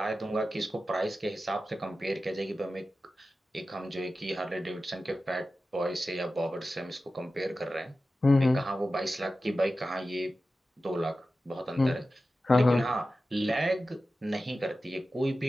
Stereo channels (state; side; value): normal; both; correlation 0.93